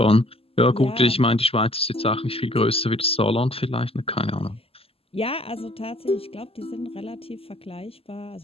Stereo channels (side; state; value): right; late; 0.28 ms